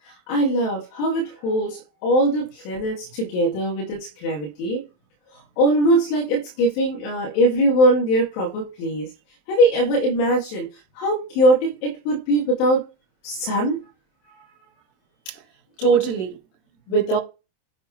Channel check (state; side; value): late; right; 27 ms